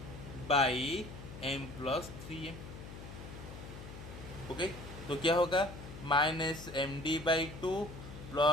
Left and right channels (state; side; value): noise; left; hum, 12 dB below the sound